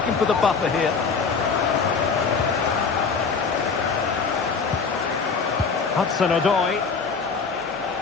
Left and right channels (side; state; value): right; quieter; 5.2 dB